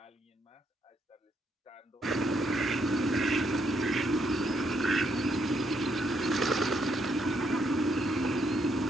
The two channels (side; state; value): both; normal; correlation 0.75